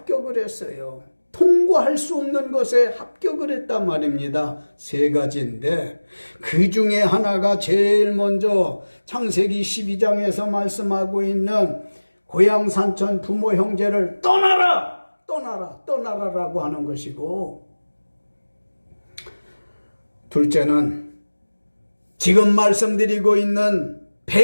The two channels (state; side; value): inverted; both; correlation -1.00